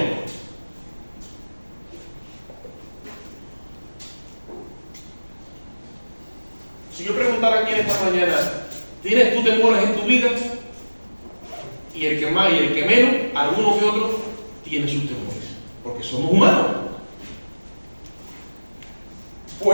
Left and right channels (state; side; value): inverted; both; correlation -1.00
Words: Si yo preguntara aquí en esta mañana: ¿tienes tú temores en tu vida? Y el que más y el que menos, alguno que otro, tiene sus temores, porque somos humanos.